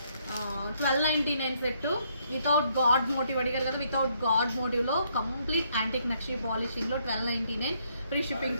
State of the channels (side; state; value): both; inverted; correlation -0.71